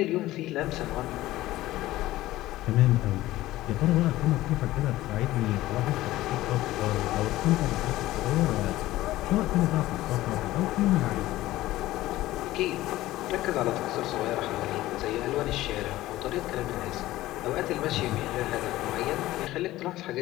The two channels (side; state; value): right; quieter; 16.3 dB